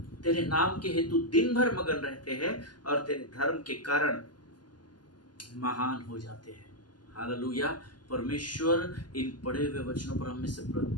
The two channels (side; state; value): right; late; 0.70 ms